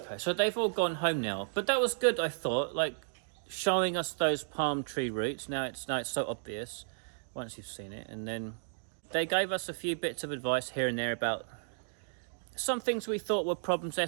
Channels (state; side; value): silent; left; digital silence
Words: so they've all gone home now, but that was good. I thought, like, showing us those palm tree roots. Now it's so obvious once you've seen it, and then they gave us a few bits of advice here and there about some things we thought were problems. They're